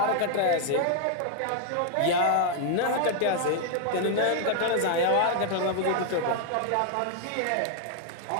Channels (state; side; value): different; both; correlation 0.00